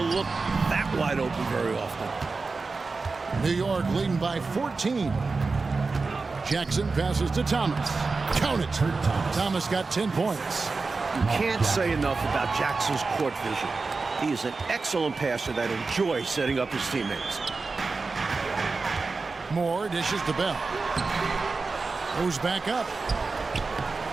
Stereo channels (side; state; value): left; quieter; 4.1 dB